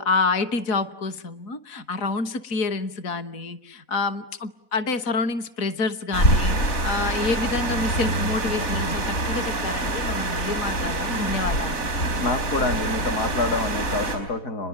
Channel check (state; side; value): late; right; 4.1 ms